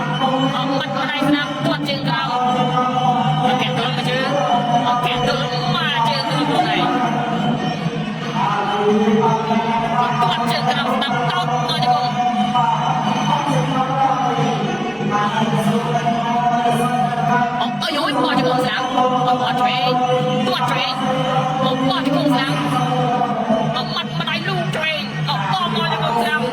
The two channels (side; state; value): both; identical; correlation 1.00